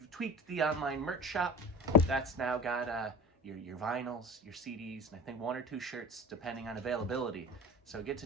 tweaked the online merch shop. That's now got your vinyls, your CDs, and I think 1 or 2 shirts depending on availability. So get to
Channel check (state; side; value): normal; both; correlation 0.35